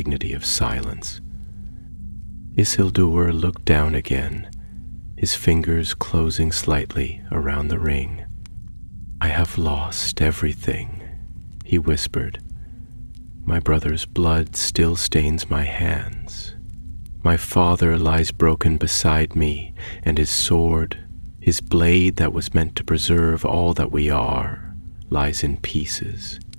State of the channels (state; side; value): inverted; both; correlation -1.00